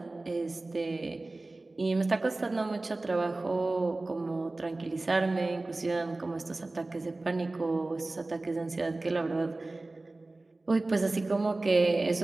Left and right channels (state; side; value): quieter; left; 3.0 dB